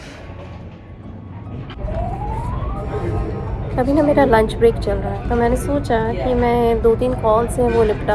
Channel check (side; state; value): both; identical; correlation 1.00